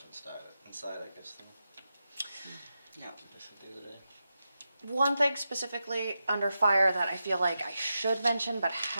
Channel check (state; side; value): inverted; both; correlation -0.90